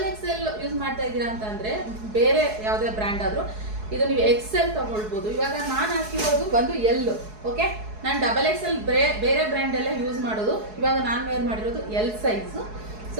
ಯೂಸ್ ಮಾಡ್ತಾ ಇದ್ದೀರಾ ಅಂತಂದರೆ ಬೇರೆ ಯಾವುದೇ ಬ್ರ್ಯಾಂಡ್ ಆದರೂ ಇದು ನೀವು XL ತಗೊಳ್ಬೋದು. ಇವಾಗ ನಾನು ಹಾಕಿರೋದು ಬಂದು L. ಓಕೆ, ನಾನು XXL ಬೇರೆ ಬ್ರ್ಯಾಂಡ್ ಎಲ್ಲ ಯೂಸ್ ಮಾಡೋದು. ಇವಾಗ ನಾನು ವೇರ್ ಮಾಡಿರೋದು L ಸೈಜು.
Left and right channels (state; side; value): late; left; 4.7 ms